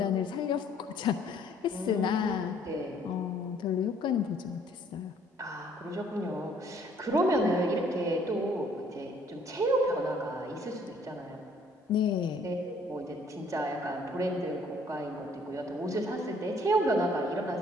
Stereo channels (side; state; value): both; normal; correlation 0.61